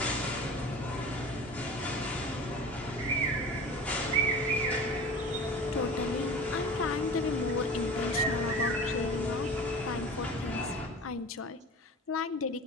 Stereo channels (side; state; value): both; normal; correlation 0.37